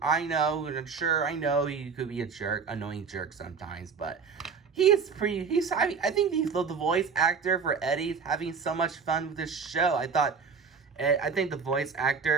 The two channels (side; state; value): left; quieter; 5.7 dB